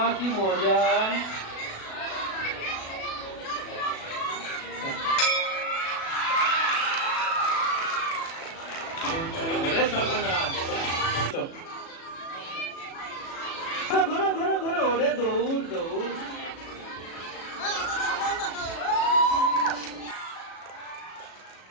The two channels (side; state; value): right; late; 37 ms